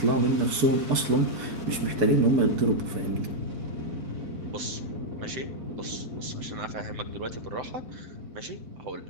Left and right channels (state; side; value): late; left; 4.6 ms